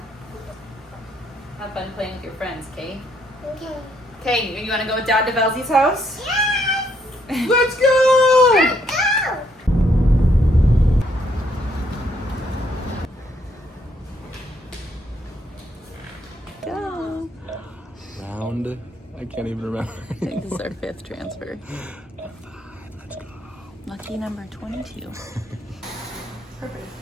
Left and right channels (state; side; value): normal; both; correlation 0.71